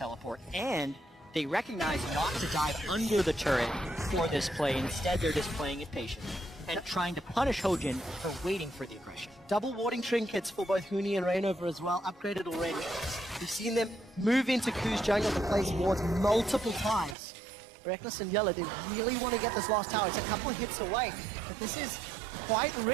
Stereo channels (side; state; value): left; drops out; at 17.2 s